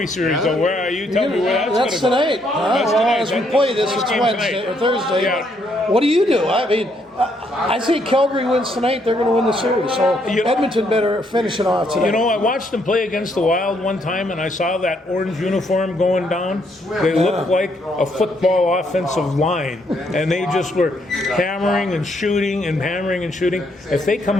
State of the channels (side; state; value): both; normal; correlation 0.72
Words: series, though. Where are you? Tell me where that's going to go. That's tonight. As we play this, it's Wednesday or Thursday. Yeah. What do you do? I mean, I say Calgary wins tonight. They're going to win the series. So Edmonton better finish it off tonight. I watched them play against the Wild one time, and I saw that orange uniform going down. They looked like a football offensive line, and they just were hammering and shooting and hammering and shooting. If they